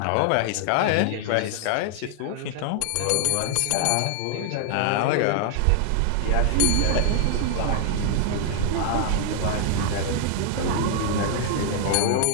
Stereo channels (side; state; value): both; different; correlation 0.00